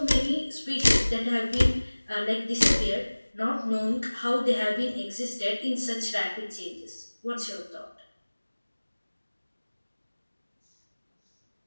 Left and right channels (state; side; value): inverted; both; correlation -1.00